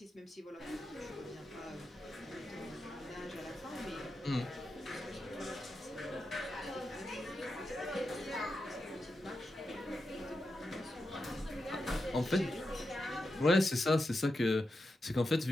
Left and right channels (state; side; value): normal; both; correlation 0.88